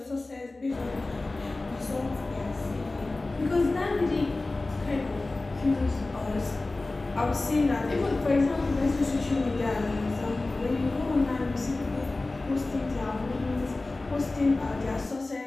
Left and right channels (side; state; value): right; quieter; 3.1 dB